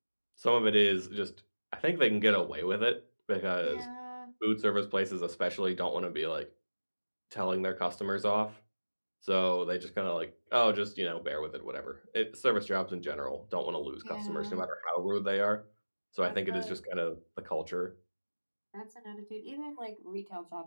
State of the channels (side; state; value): both; inverted; correlation -1.00